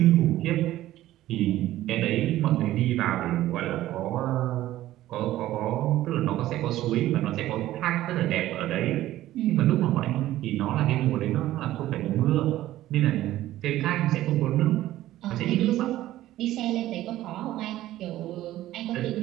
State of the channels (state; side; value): quieter; left; 14.6 dB